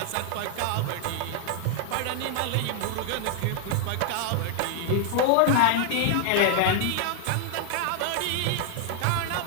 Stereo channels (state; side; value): different; both; correlation 0.00